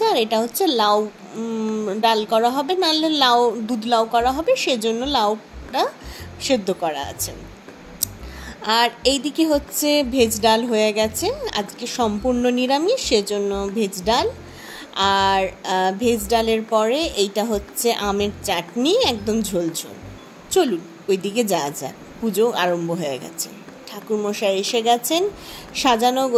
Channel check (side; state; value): both; identical; correlation 1.00